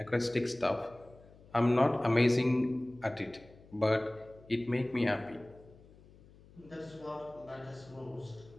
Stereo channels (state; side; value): noise; left; hum, 24 dB below the sound